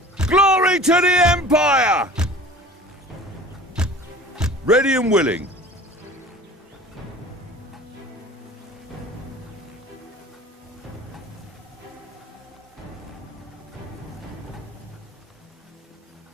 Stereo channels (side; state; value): both; normal; correlation 0.43